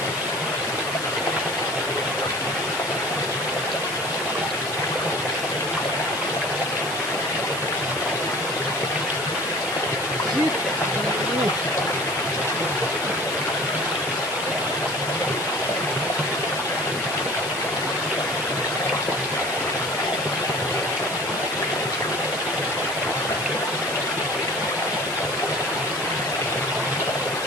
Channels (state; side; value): noise; left; hiss, 11 dB below the sound